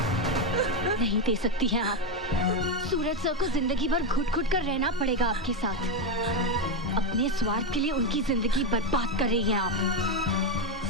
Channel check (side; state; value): both; normal; correlation 0.08